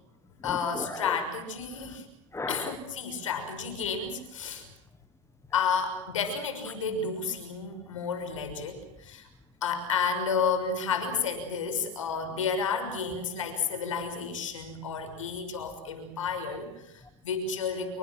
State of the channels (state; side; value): quieter; right; 5.3 dB